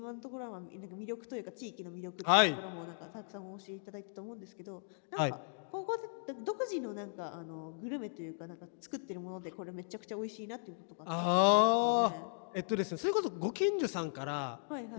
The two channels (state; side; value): silent; right; digital silence